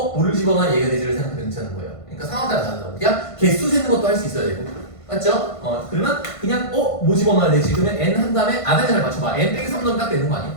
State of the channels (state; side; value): late; right; 1.5 ms